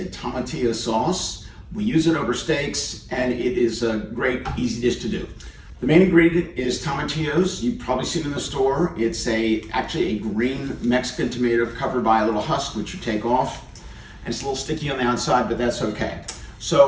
tomatillo sauce. We use it over steaks and it is a great, easy dish to do. The main ingredient is tomatillos. You've probably seen it in the store. It's actually a green Mexican tomato covered by a little husk which you take off. And it's a little sticky on the outside, but that's okay.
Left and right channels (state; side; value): identical; both; correlation 1.00